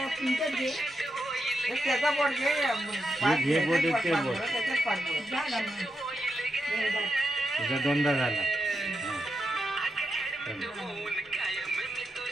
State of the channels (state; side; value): normal; both; correlation 0.86